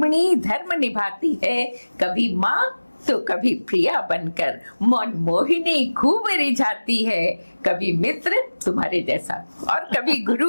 धर्म निभाती है। कभी माँ तो कभी प्रिया बनकर मन मोहिनी खूब रिझाती है। कभी मित्र तुम्हारे जैसा और कभी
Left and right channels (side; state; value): both; inverted; correlation -1.00